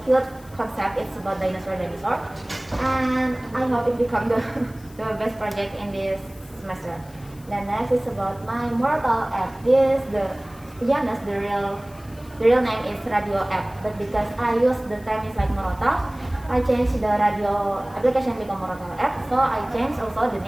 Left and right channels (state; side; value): noise; left; hiss, 25 dB below the sound